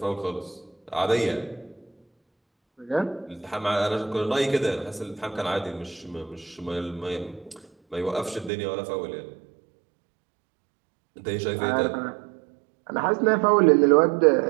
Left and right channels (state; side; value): drops out; left; at 8.5 s